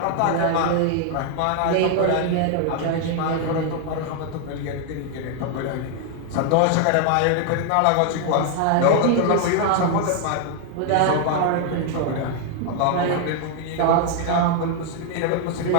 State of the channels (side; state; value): both; different; correlation 0.00